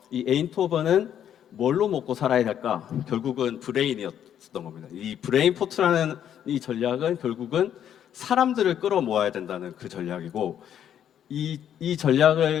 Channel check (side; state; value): right; quieter; 9.8 dB